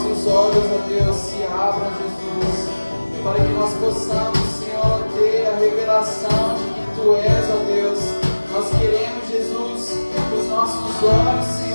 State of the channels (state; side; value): inverted; both; correlation -1.00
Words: nossos olhos, ó Deus, se abram, Jesus, para que nós possamos, Senhor, ter a revelação de que Tu és, ó Deus. Nós queremos, Jesus, que os nossos olhos,